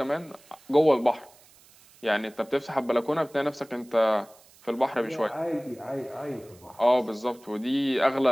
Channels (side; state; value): right; noise; hiss, 27 dB below the sound